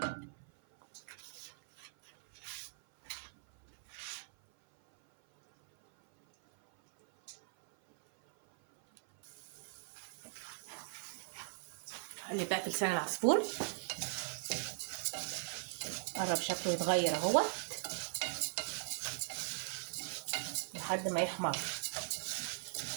اقلب بقى في لسان العصفور. قرب شكله يتغير اهوت لحد ما يحمر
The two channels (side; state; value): left; silent; 51 dB below the other